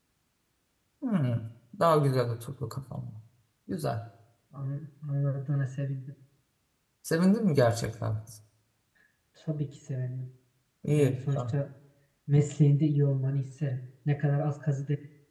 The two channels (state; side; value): identical; both; correlation 1.00